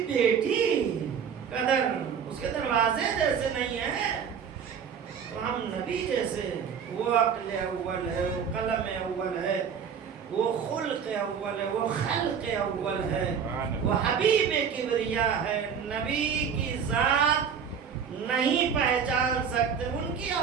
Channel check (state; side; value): quieter; left; 7.2 dB